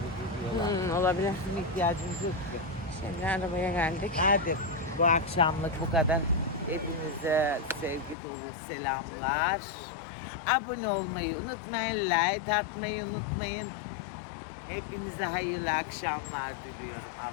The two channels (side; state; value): right; drops out; at 8.2 s